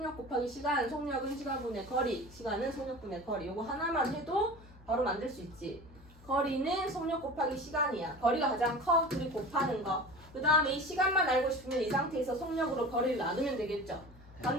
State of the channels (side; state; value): both; normal; correlation 0.36